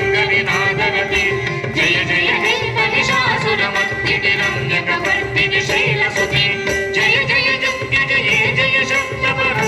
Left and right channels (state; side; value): identical; both; correlation 1.00